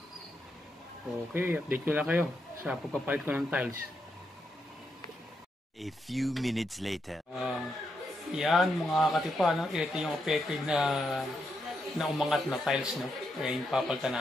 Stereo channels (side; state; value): both; normal; correlation 0.82